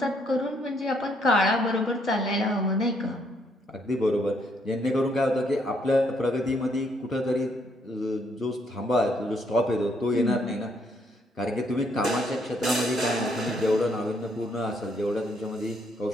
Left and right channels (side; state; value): both; normal; correlation 0.71